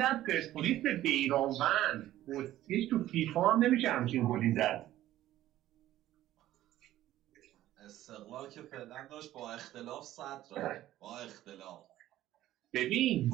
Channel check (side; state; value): left; quieter; 14.0 dB